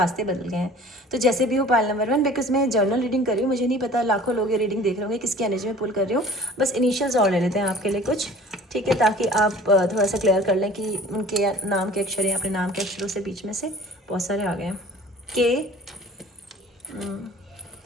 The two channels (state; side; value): normal; both; correlation 0.46